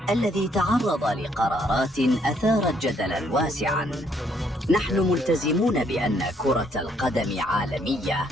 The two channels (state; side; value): normal; both; correlation 0.69